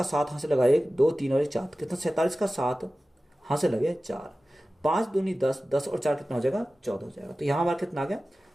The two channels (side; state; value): both; normal; correlation 0.96